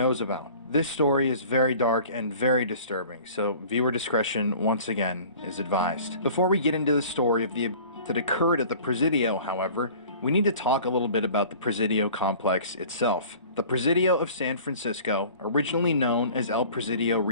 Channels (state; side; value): inverted; both; correlation -0.46